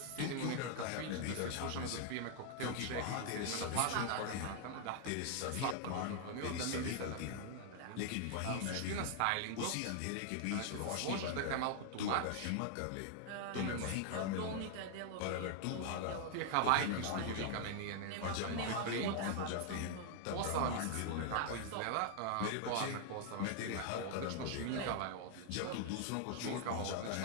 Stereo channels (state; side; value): different; both; correlation 0.00